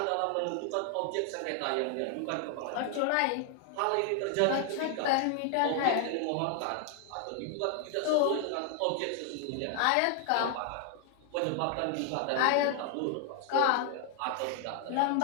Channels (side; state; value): both; different; correlation 0.00